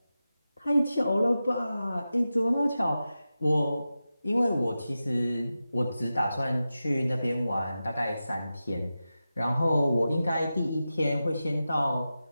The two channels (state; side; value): inverted; both; correlation -0.93